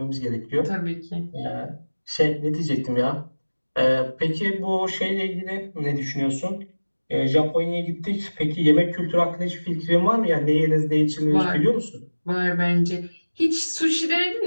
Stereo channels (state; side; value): inverted; both; correlation -1.00